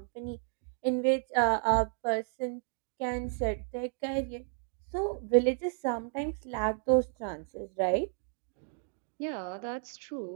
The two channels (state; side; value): silent; left; digital silence